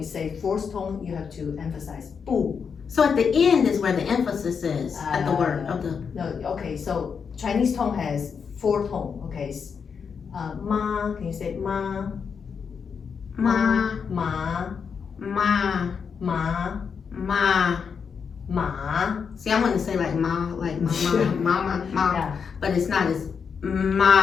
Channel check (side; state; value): right; quieter; 6.3 dB